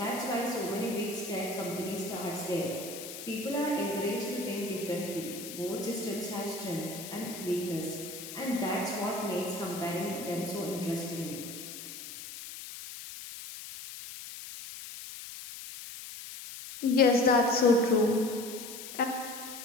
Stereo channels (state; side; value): noise; left; hiss, 11 dB below the sound